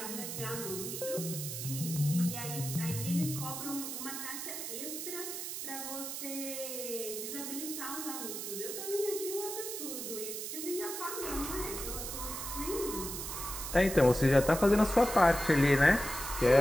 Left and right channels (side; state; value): right; noise; hiss, 6 dB below the sound